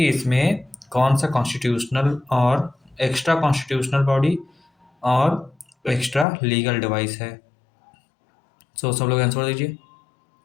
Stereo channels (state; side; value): drops out; right; at 6.2 s